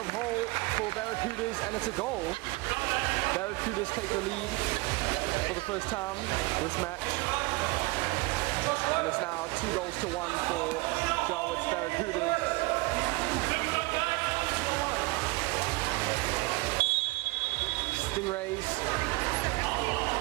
Hull for Barracudas, and it's a goal. Barracudas take the lead for the first time this match. And it's now 2-1 for Jawitz Barracudas. Stingrays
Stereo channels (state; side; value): quieter; left; 23.7 dB